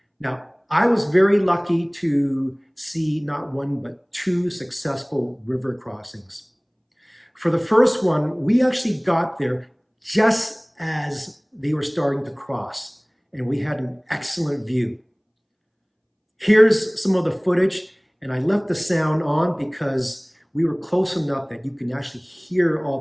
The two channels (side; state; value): both; identical; correlation 1.00